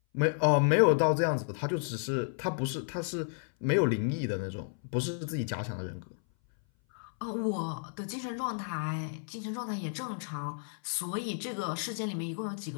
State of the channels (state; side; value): silent; right; 56 dB below the other